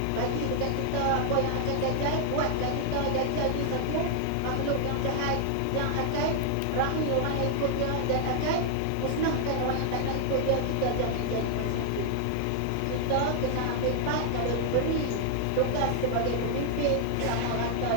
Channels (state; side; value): different; both; correlation 0.00